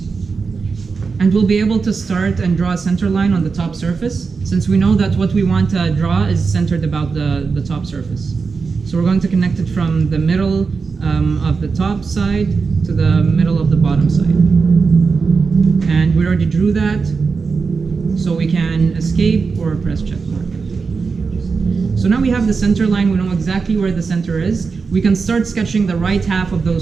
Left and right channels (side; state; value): left; quieter; 4.9 dB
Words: And we'll be able to start and draw a center line on the top surface, since we know that what we want to draw is centered about the top surface. So we're going to connect it from the middle of the top side to the middle of the bottom side. And we already drew that, so we can escape or press check mark. So now we have the center line, we know exactly where the center is. We can start sketching the right half of